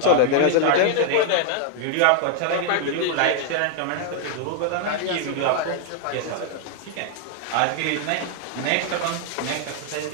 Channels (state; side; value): different; both; correlation 0.00